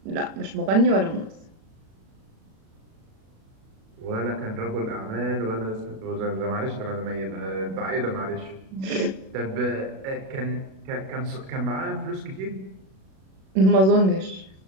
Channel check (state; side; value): late; left; 37 ms